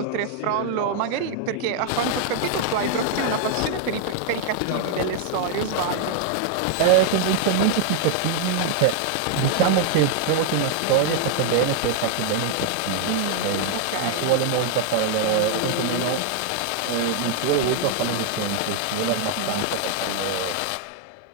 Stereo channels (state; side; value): different; both; correlation 0.00